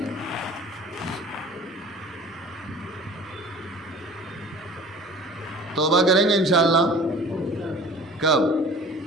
توبہ کریں گے انشاءاللہ؟ کب؟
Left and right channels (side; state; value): both; normal; correlation 0.43